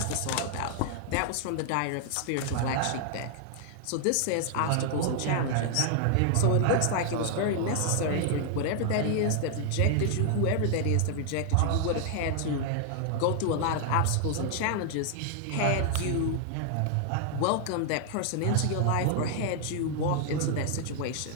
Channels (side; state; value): both; different; correlation 0.00